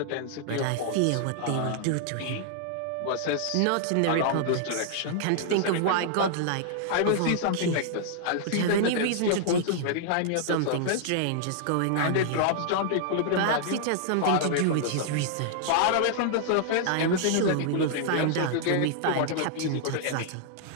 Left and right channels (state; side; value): different; both; correlation -0.01